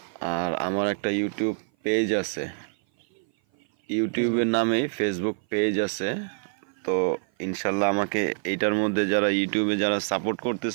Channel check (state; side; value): silent; left; 56 dB below the other